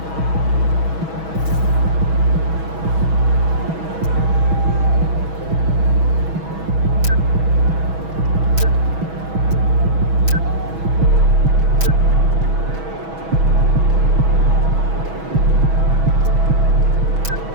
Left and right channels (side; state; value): left; late; 6.2 ms